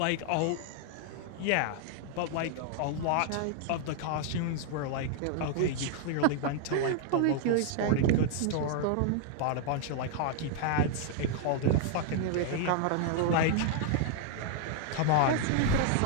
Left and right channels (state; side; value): different; both; correlation 0.00